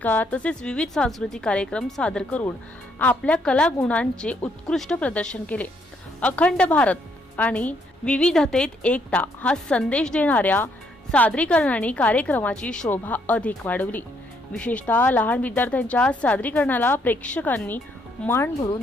तसेच विविध सांस्कृतिक कार्यक्रम सादर करून आपल्या कलागुणांचे उत्कृष्ट प्रदर्शन केले। अखंड भारत आणि विविधतेत एकता हा संदेश देणाऱ्या सादरीकरणाने कार्यक्रमाची शोभा अधिक वाढवली। विशेषतः लहान विद्यार्थ्यांच्या सादरीकरणाला प्रेक्षकांनी मान भरून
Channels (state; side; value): normal; both; correlation 0.71